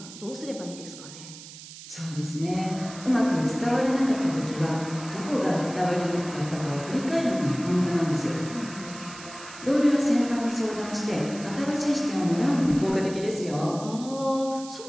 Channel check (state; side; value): noise; right; hiss, 15 dB below the sound